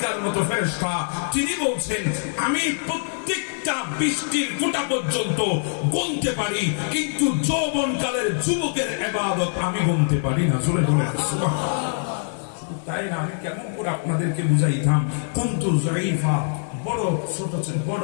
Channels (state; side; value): silent; right; 63 dB below the other